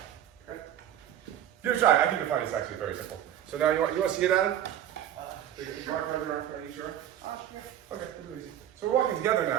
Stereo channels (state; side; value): quieter; left; 11.0 dB